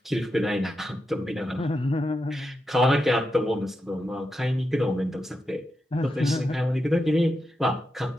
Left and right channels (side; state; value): both; normal; correlation 0.87